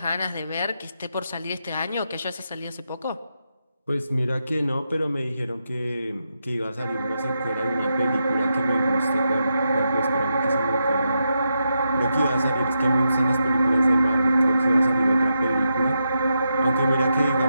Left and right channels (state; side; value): inverted; both; correlation -0.85